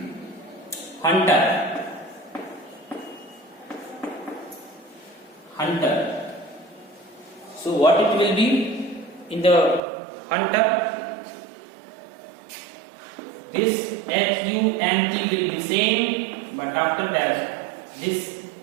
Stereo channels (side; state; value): left; drops out; at 9.8 s